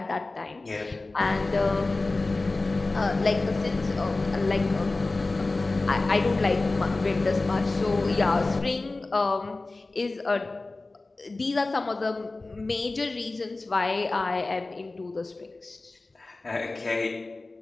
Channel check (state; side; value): quieter; right; 3.3 dB